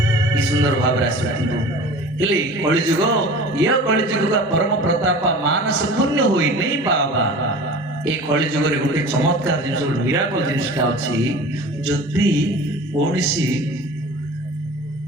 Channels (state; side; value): normal; both; correlation 0.39